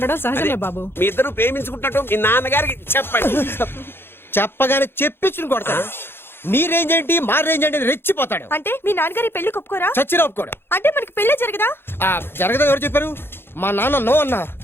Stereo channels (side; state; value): right; late; 0.11 ms